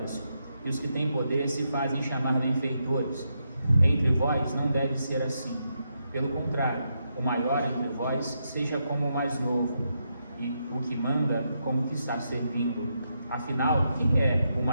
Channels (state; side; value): inverted; both; correlation -0.82